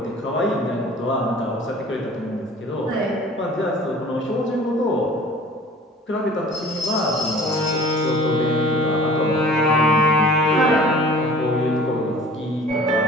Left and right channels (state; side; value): normal; both; correlation 0.46